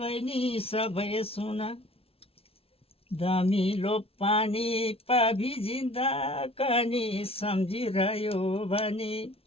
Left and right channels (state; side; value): late; right; 0.27 ms